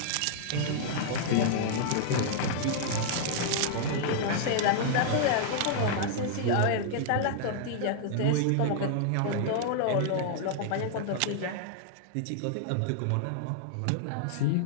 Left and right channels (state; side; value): different; both; correlation -0.01